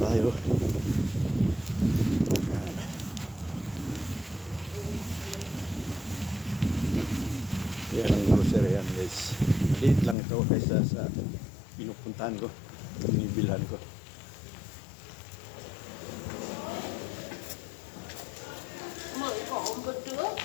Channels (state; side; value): drops out; right; at 10.2 s